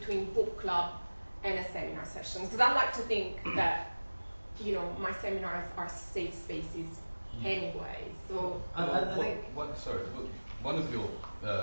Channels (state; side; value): inverted; both; correlation -1.00